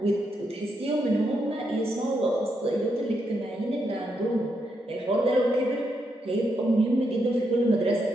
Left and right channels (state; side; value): normal; both; correlation 0.80